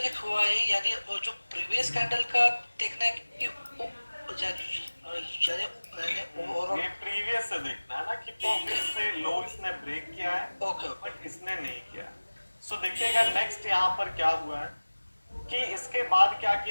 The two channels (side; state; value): both; inverted; correlation -1.00